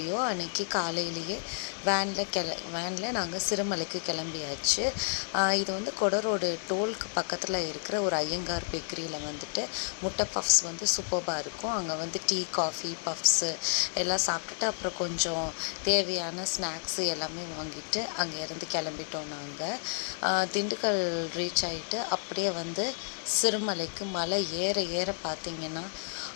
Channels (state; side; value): silent; right; 57 dB below the other